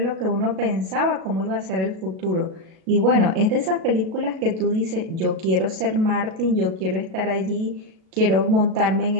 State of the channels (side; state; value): left; late; 37 ms